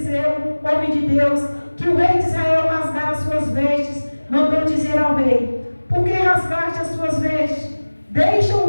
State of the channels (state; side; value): inverted; both; correlation -1.00